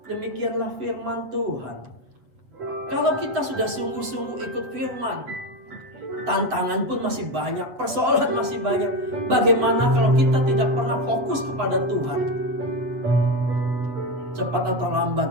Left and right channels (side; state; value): left; late; 8.2 ms